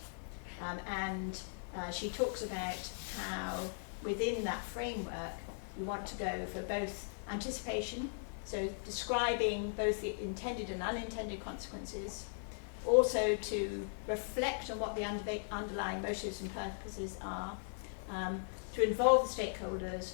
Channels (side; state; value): right; silent; digital silence